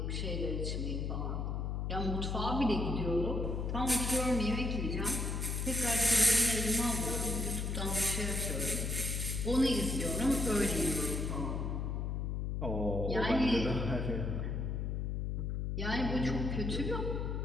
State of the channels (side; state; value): left; noise; hum, 1 dB below the sound